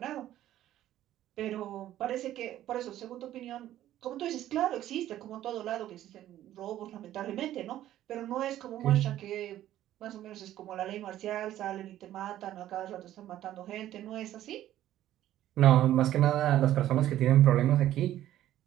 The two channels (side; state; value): left; quieter; 13.0 dB